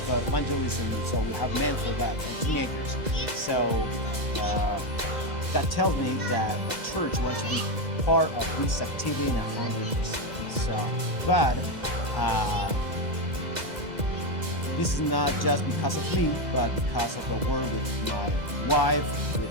the evangelism? So we have men for that. Teenagers. So that tells me that the church wants to be part of this activity in 100%. So, but this is not just because of me, but because of the work with my wife,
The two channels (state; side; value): late; left; 2.0 ms